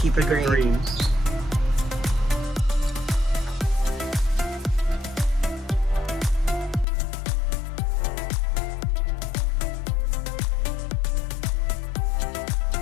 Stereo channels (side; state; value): right; drops out; at 6.9 s